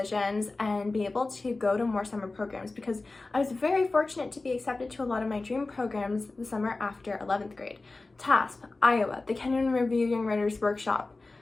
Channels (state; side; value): quieter; right; 3.4 dB